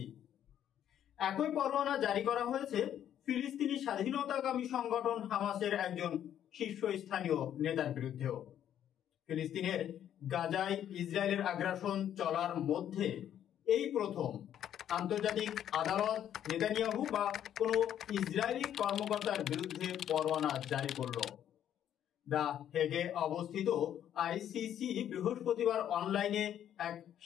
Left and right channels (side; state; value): right; quieter; 10.4 dB